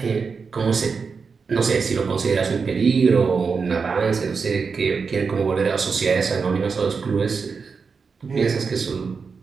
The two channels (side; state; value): left; quieter; 5.2 dB